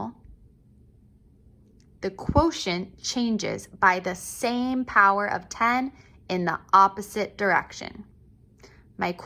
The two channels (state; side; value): identical; both; correlation 1.00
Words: the quotient changes by the same power of 10 in the opposite direction. My